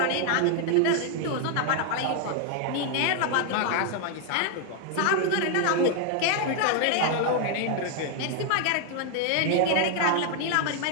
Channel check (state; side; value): different; both; correlation 0.00